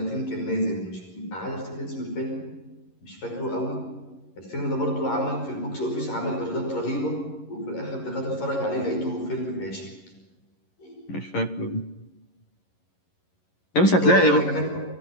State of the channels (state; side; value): late; right; 11 ms